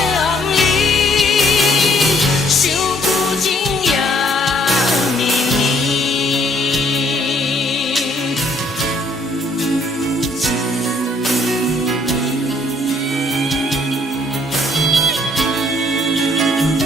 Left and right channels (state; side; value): normal; both; correlation 0.64